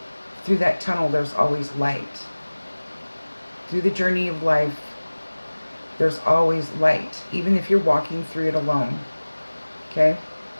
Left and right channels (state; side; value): inverted; both; correlation -1.00